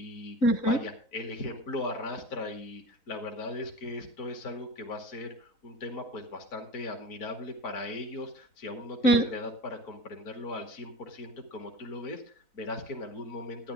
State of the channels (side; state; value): right; late; 3.9 ms